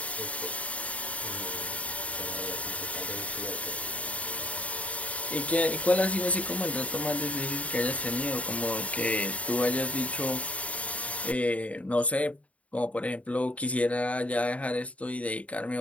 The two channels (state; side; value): late; right; 0.067 ms